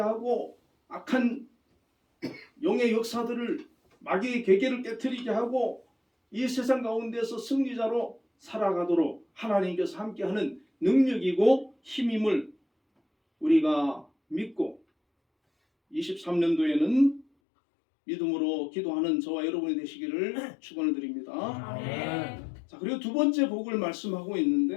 악한 영의 역사들을 마귀의 계계를 깨트리게 하고 이 세상 가운데서 승리자로 살아가도록 하나님께서 함께하는 능력이고 힘임을 우리가 믿고 23년도에는 믿음으로 기도하는 저와 여러분이 되시기를 축원을 드립니다. 아멘. 자, 그리고 두 번째 복을 말씀하고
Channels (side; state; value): right; drops out; at 17.2 s